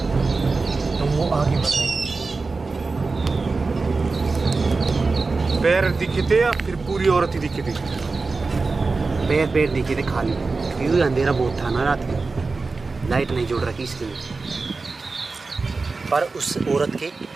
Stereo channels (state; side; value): quieter; left; 4.0 dB